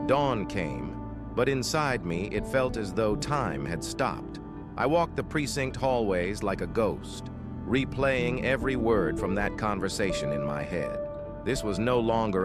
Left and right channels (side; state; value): both; identical; correlation 1.00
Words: Dawn came, but inside me it felt as though time had stopped. I walked the precinct hallways like a ghost, replaying every word from that conversation in my head. This was no longer